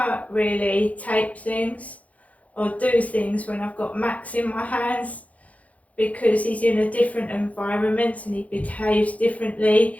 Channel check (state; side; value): late; right; 0.068 ms